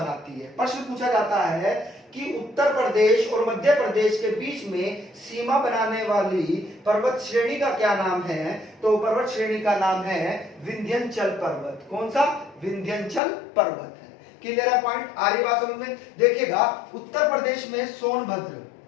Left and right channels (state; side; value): drops out; right; at 13.2 s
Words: है। प्रश्न पूछा जाता है कि उत्तर प्रदेश और मध्य प्रदेश के बीच में सीमा बनाने वाली पर्वत श्रेणी का क्या नाम है? तो पर्वत श्रेणी का नाम है विंध्याचल पर्वत। कौन सा? विंध्याचल पर्वत है। क्लियर है पॉइंट? आ रही बात समझ में? देखिएगा, उत्तर प्रदेश में सोनभद्र